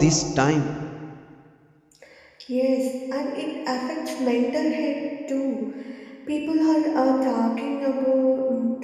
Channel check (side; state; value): both; identical; correlation 1.00